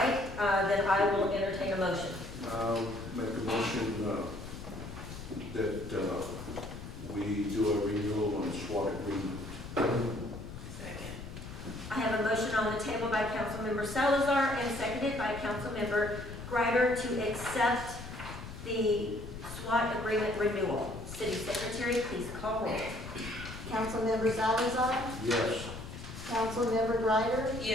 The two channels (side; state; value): left; noise; rumble, 11 dB below the sound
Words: then I will entertain a motion. I'll make a motion that we do a renewal on SWAT agreement. Second. I have a motion on the table by Councilmember Salazar and seconded by Councilmember Greider to accept the SWAT agreement renewal. City Secretary, please call roll. Councilmember Salazar, Yes. Councilmember Greider,